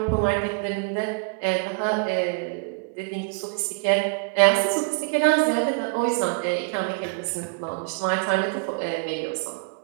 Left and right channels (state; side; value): quieter; left; 33.3 dB